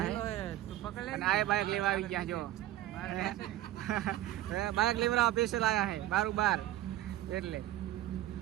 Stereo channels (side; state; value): left; quieter; 14.3 dB